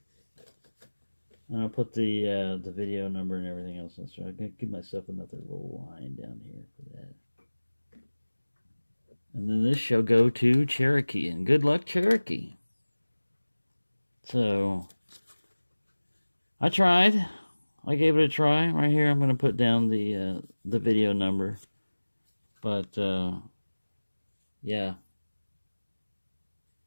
And I'll put the video number and everything else in. So I'm going to give myself another little line down here for that. And then this shall go to Cherokee. And good luck, Cherokee. So, I tried. I gave it a try. Right here, I'm going to put down the video number. But, yeah.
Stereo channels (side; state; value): both; inverted; correlation -1.00